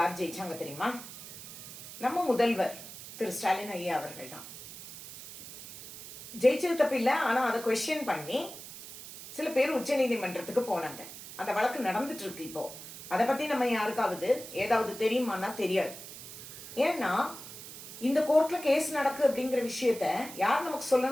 ஜெயிச்சாங்க தெரியுமா? நம்ம முதல்வர் திரு ஸ்டாலின் ஐயா அவர்கள் தான் ஜெயிச்சது தப்பில்லை. ஆனா அதை கொஸ்டின் பண்ணி சில பேர் உச்ச நீதிமன்றத்துக்கு போனாங்க. அந்த வழக்கு நடந்துட்டு இருக்கு இப்போ. அதை பத்தி நம்ம யாருக்காவது ஏதாவது தெரியுமானா தெரியாது. ஏன்னா இந்த கோர்ட்ல கேஸ் நடக்கு அப்படிங்கிற விஷயத்த யார் நமக்கு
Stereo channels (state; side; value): noise; right; hiss, 13 dB below the sound